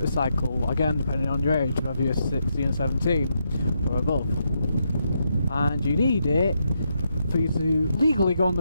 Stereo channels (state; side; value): inverted; both; correlation -0.80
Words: again depending on your age, whether you're 16 or 17 or above. And you need it for you to legally go on